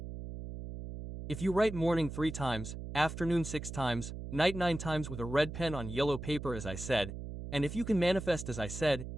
If you write morning 3 times, afternoon 6 times, night 9 times with a red pen on yellow paper as I said, and if you can manifest as I said,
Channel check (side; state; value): right; noise; hum, 8 dB below the sound